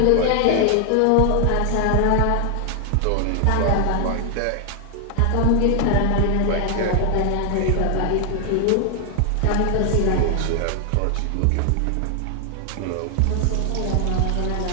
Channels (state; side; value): different; both; correlation 0.00